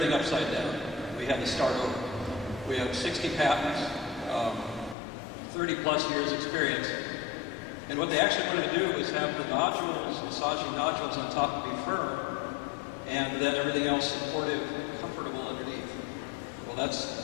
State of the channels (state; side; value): drops out; right; at 5.0 s